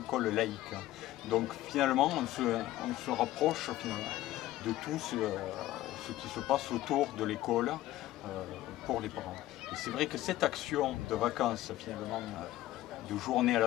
laïque. Donc finalement, on se rapproche de tout ce qui se passe autour de l'école pour les parents. Et c'est vrai que cette action de vacances, finalement, de journée à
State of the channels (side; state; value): right; quieter; 15.3 dB